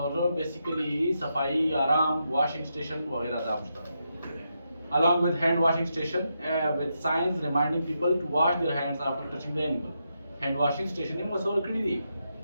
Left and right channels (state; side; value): inverted; both; correlation -0.84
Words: basically सफाई आराम washing station वगैरह दा मुश्ता. Along with hand washing station with signs reminding people to wash their hands after touching the animal. Hand washing station में मसौर करी दी